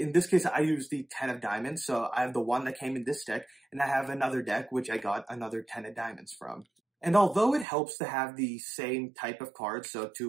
this case, I use the 10 of diamonds. So I have the one that came in this deck, and I have another deck, which I got another 10 of diamonds from. And although it helps to have the same type of cards, so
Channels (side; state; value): left; drops out; at 7.7 s